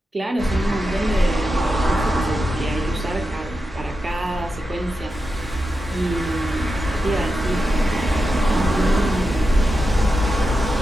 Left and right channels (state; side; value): normal; both; correlation 0.89